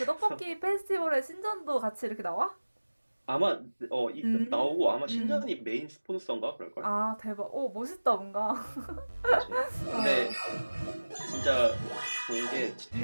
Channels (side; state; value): both; inverted; correlation -1.00